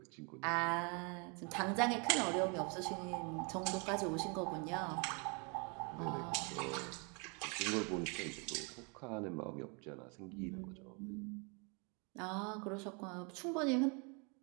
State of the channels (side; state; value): left; quieter; 33.8 dB